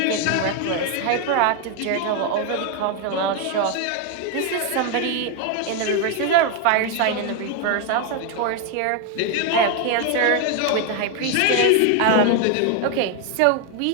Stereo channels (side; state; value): both; different; correlation 0.01